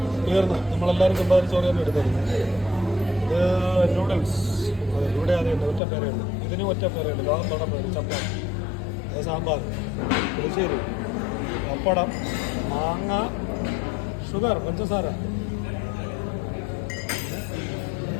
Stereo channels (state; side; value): drops out; right; at 5.8 s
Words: തീർന്ന് നമ്മളെല്ലാവരും ചെമ്പാവരി ചോറ് തന്നെ എടുത്തത്. ഇത് നൂഡിൽസ്. അതെ, ഇവിടെ അറിയുന്നത് ഒറ്റ പേരേ ഉള്ളൂ. ഇതിനും ഒറ്റ പേരേ ഉള്ളൂ. ലോകം തൊടം പേര് ചപ്പാത്തി. അത് സാമ്പാർ, പുളിശ്ശേരി, പപ്പടം, മാങ്ങ, ഷുഗർ, പഞ്ചസാര.